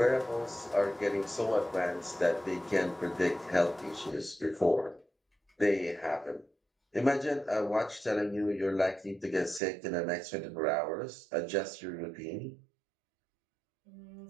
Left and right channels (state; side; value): drops out; left; at 9.6 s